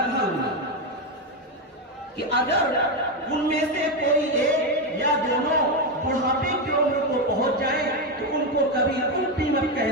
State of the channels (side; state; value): both; normal; correlation 0.09